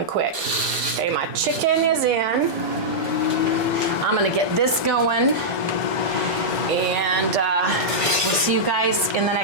quick. Okay, my chicken is in. I'm gonna get this going, and we'll see you guys in the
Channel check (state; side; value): normal; both; correlation -0.09